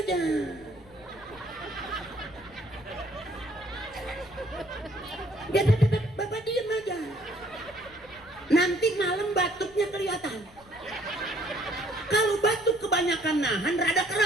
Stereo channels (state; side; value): noise; left; rumble, 24 dB below the sound